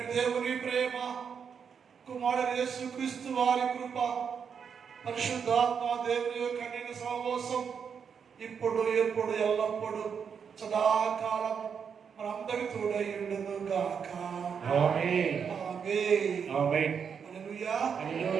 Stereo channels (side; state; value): left; quieter; 6.8 dB